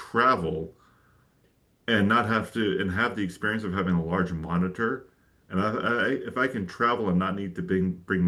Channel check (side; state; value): both; identical; correlation 1.00